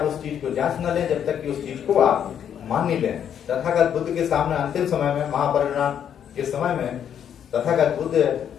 उस चीज को जांच न लें, जब तक कि उस चीज को आप मान नहीं लें। तथागत बुद्ध के सामने अंतिम समय में, महापरिनिर्वाण के समय में, तथागत बुद्ध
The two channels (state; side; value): quieter; right; 9.0 dB